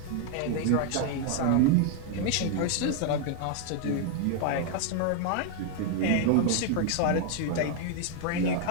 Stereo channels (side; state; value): both; different; correlation 0.00